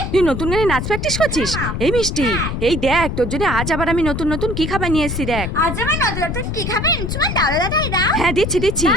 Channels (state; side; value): noise; left; rumble, 3 dB below the sound